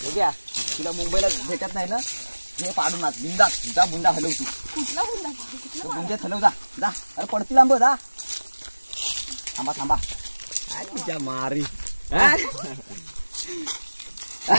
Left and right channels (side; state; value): both; inverted; correlation -1.00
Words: बघूया तुला मुंबईला भेटत नाही ना हे पाडून आत बुंदा जा बुंदा हलव तू कुठला बुंदा बुंद्यात हलव जा अरे पडतील आंब जा थांबा थांबा तुझ्या मारी